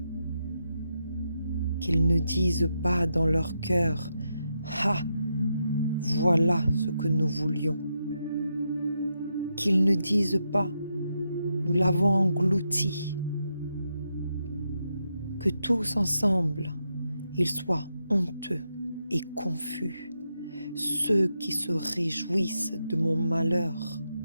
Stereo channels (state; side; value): inverted; both; correlation -0.84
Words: qu'ils ne disent pas dans leur cœur « Ah, voilà ce que nous voulions », qu'ils ne disent pas « Nous l'avons englouti », que tous ensemble, ils soient honteux et confus, ceux qui se réjouissent de mon malheur,